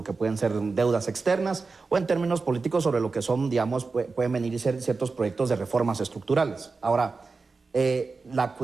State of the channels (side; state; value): left; quieter; 4.2 dB